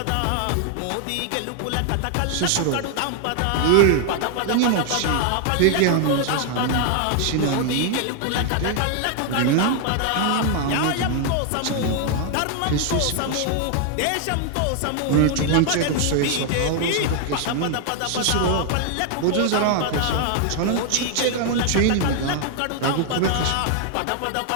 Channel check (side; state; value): both; different; correlation 0.00